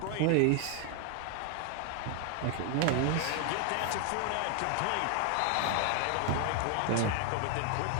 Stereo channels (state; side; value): different; both; correlation 0.01